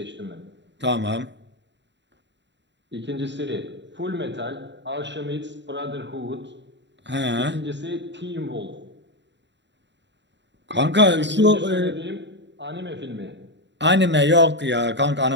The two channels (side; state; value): left; late; 0.52 ms